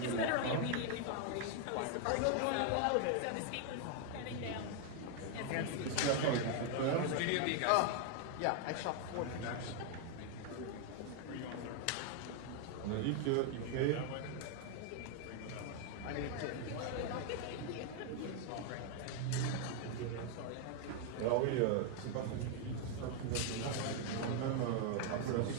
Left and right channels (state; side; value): different; both; correlation 0.00